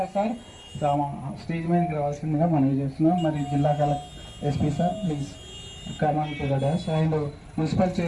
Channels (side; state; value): both; identical; correlation 1.00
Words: sir stage మీదకి రావాల్సిందిగా మనవి చేస్తున్నాం. మరి జిల్లా collector SP sir please come on to the dash. And municipal